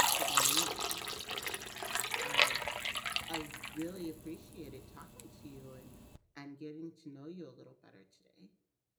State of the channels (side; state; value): both; identical; correlation 1.00